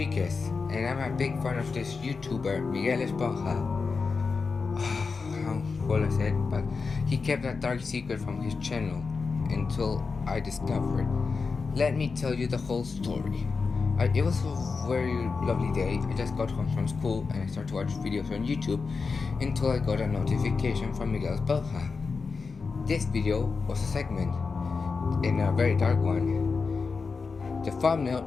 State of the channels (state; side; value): quieter; right; 4.7 dB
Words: and I'm a big fan of this YouTuber, Miguel Esponja. How well I said, but he kept a dark secret from his channel until I discovered. Let me tell you the whole story. It was a very lovely day. I just got home from school and I started to watch videos on YouTube until I got a notification from Miguel Esponja. This video was a segment in a very dark one. The thumbnail